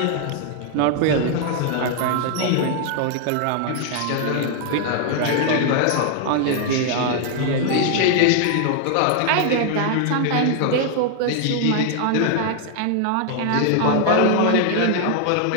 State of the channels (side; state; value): both; different; correlation 0.00